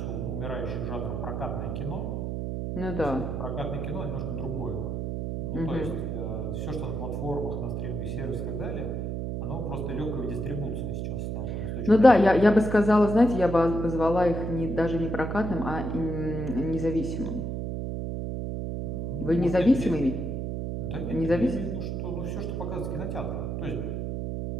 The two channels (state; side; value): noise; right; hum, 3 dB below the sound